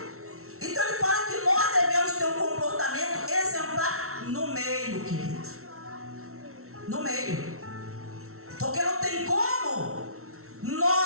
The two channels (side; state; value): left; late; 0.63 ms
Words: Então ele fala que nós devemos ter um comportamento exemplar no meio, querido. No meio. Porque não tem como